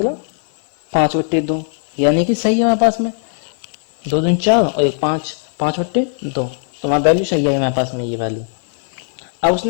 5/2, यानी कि सही है हमारे पास में 2 दूनी 4 और 1 5, 5/2, तो हमारा वैल्यू सही है हमारे पास में ये वैल्यू। अब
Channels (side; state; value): right; silent; 67 dB below the other